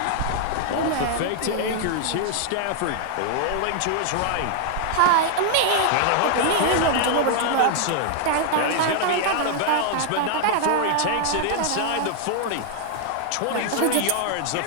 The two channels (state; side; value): different; both; correlation 0.00